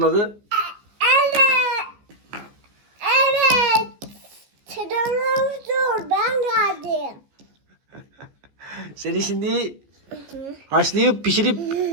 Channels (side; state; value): left; late; 14 ms